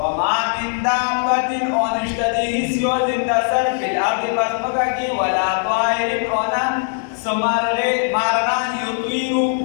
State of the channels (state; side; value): silent; right; 63 dB below the other